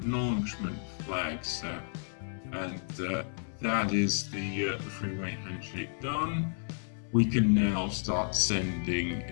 flag set, and that is the three-way handshake done. We can now start sending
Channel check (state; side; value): silent; right; 57 dB below the other